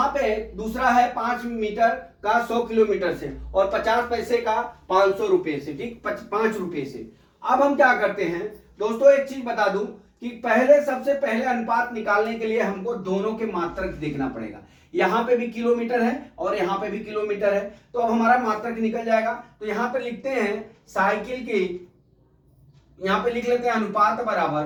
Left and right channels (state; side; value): identical; both; correlation 1.00